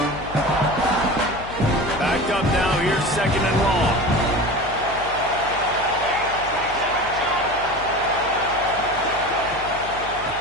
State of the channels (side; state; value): left; noise; hum, 15 dB below the sound